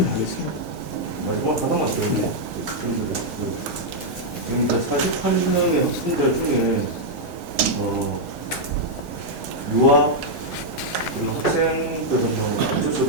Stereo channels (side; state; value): both; normal; correlation -0.03